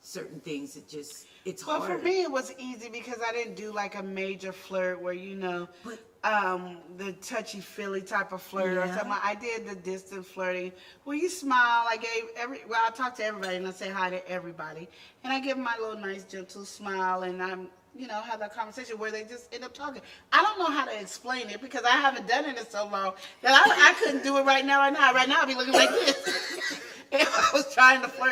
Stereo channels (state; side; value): identical; both; correlation 1.00